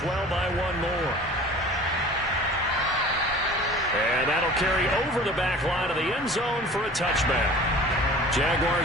by 1 more. And that'll carry over the back line of the end zone for a touchback.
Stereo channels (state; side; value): normal; both; correlation 0.43